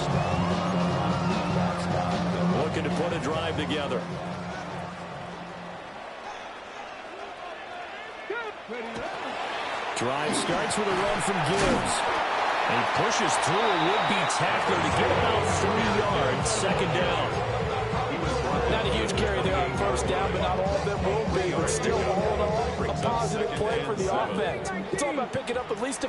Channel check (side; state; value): both; identical; correlation 1.00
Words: Looking to put a drive together. Drive starts with a run from Gibbs. He pushes through a would-be tackler to get about 3 yards. 2nd down. Not a huge carry there on 1st down, but not all of them will be. But still, all in all, a positive play for the offense. It's all about picking up at least a